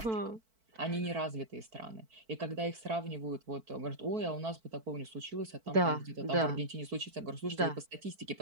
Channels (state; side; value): late; left; 4.5 ms